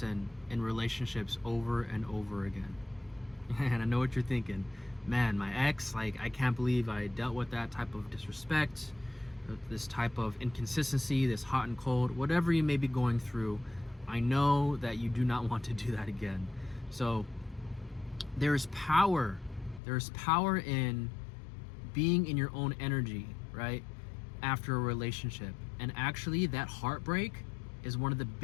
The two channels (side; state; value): right; drops out; at 19.8 s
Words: in relationships over and over again. And I know what you're thinking. Man, my ex, like, I can't believe I dealt with that type of disrespect, this type of inconsistency, this hot and cold, whatever you may be going through. I know that you do not want to do that again. So there's power. There's power in being in your own energy, right? After a relationship. And actually, that heartbreak is one of the